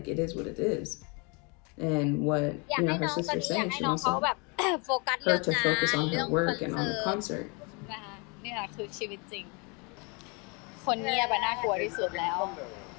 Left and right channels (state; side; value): quieter; right; 31.6 dB